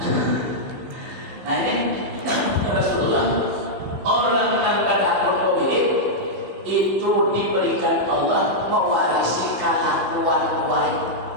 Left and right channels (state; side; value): late; left; 16 ms